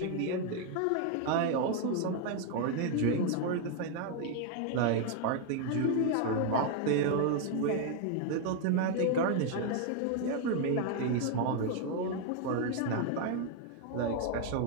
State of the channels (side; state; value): both; different; correlation 0.01